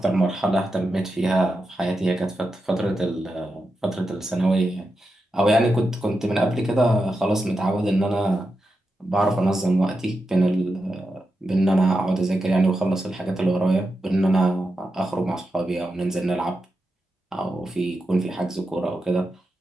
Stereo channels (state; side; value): normal; both; correlation 0.88